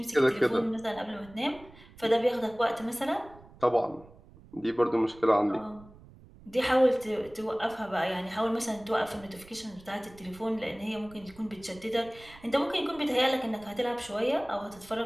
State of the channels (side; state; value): right; noise; rumble, 22 dB below the sound